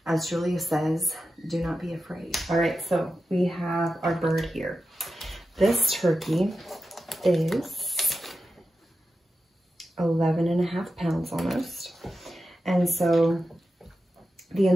As Julia says, do not be afraid. All right, so we have our bird here. This turkey is 11.5 pounds almost. And so the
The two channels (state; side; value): normal; both; correlation 0.91